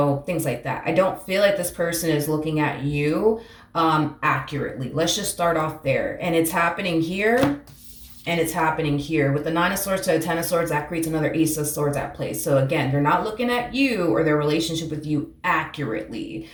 like that. I don't feel like this person is looking at you accurately. Let's just start off there. And it's happening here. And it's happening here. With the Nine of Swords to the Ten of Swords, that creates another Ace of Swords at play. So again, they're not looking at you or their relationship with you accurately.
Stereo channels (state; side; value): identical; both; correlation 1.00